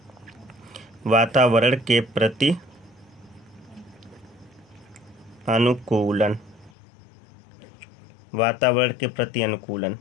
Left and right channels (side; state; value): right; drops out; at 6.7 s